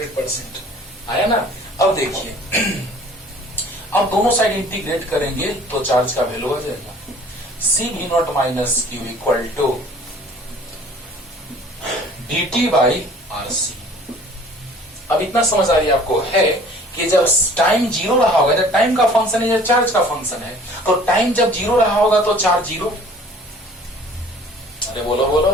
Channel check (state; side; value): normal; both; correlation 0.51